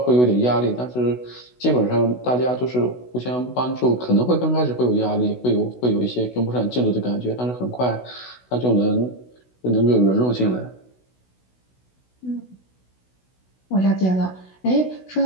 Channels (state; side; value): late; right; 16 ms